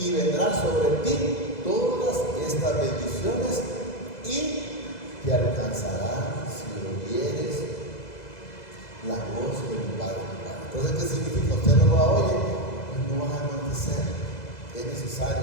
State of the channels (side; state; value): right; late; 2.0 ms